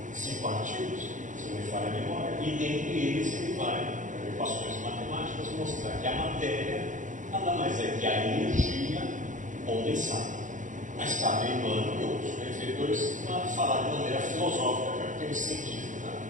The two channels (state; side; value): late; left; 0.37 ms